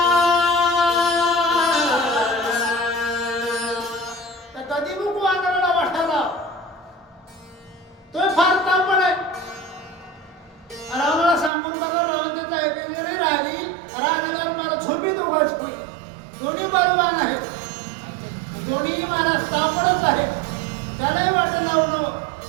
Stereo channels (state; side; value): drops out; left; at 11.5 s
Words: कधी बुक वानराला वाटायला तो फार तापड आहे रावणाला सांगून बघा रावण त्याचं ऐकले नाही राहिली राहिलेला मला झोपी दोघांची होई दोन्ही बलवान आहेत दोन्ही महाराज तापडच आहे त्यालाही वाटत लावणं